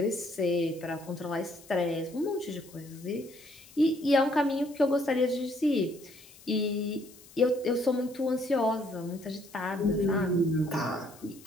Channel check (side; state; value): left; noise; hiss, 22 dB below the sound